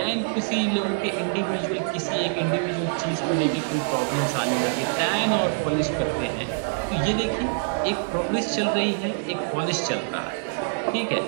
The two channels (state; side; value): silent; left; digital silence